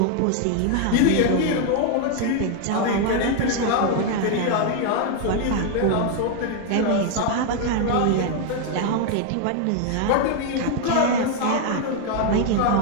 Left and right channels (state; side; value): different; both; correlation 0.00